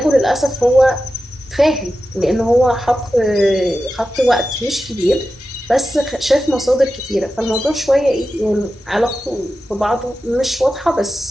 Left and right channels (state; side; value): normal; both; correlation 0.92